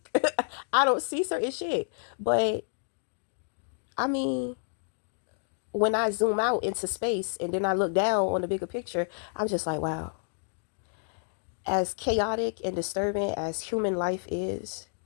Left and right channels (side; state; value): right; silent; digital silence